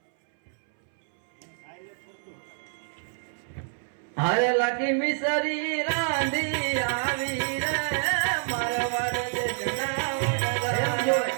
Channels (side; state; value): left; silent; 60 dB below the other